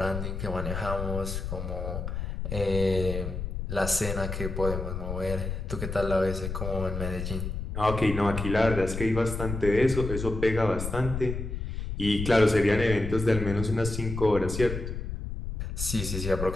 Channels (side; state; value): left; noise; rumble, 5 dB below the sound